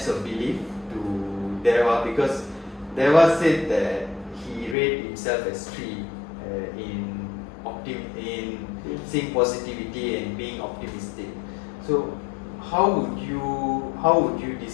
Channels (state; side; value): drops out; right; at 4.8 s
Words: of belief to Deva, because Deva said that he rated himself as 3 in seeing positivity and being optimistic. So how would you